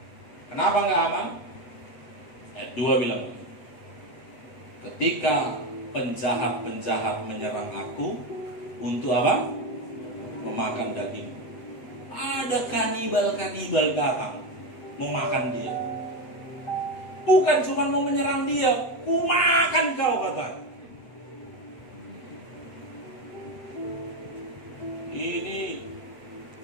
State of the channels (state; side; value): late; right; 8.0 ms